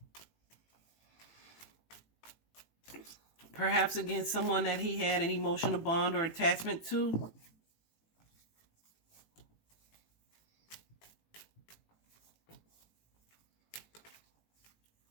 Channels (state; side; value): late; right; 18 ms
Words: Perhaps against someone that he had an emotional bond or attachment to.